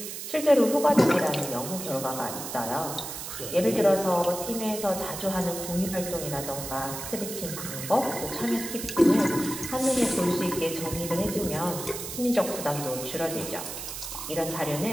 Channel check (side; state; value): right; noise; hiss, 8 dB below the sound